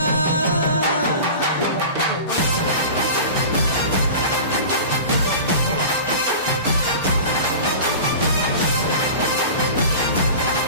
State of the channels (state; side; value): inverted; both; correlation -0.35